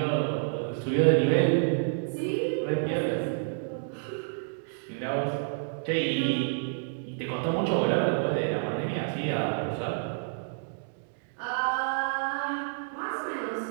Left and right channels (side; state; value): left; silent; digital silence